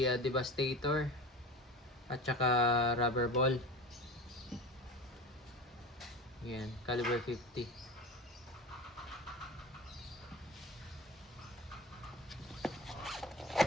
Devastator at saka rubber ball. Yan, caliber 50.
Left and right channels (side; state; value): both; normal; correlation 0.31